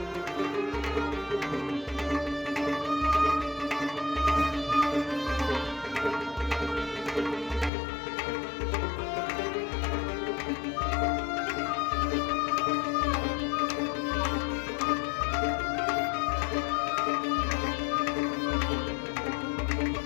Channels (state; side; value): drops out; right; at 7.7 s